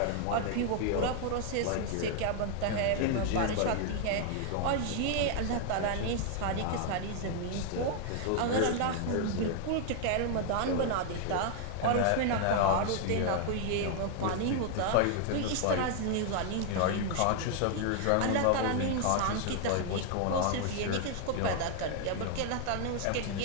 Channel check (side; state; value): both; different; correlation 0.00